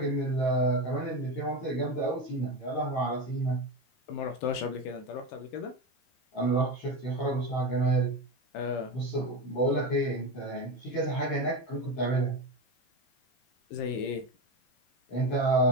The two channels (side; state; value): right; late; 16 ms